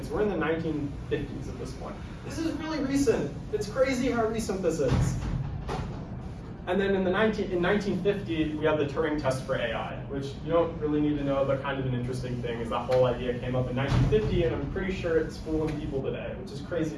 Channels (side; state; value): both; identical; correlation 1.00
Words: We're in the 1950s at this point. This is really recent. It's crazy how recent this is. And then in 1950, we have the Turing test for AI, which you don't really need to know, but kind of an interesting thing is that whole idea came up in 1950, and I'm pretty sure it's fooling people today, which is crazy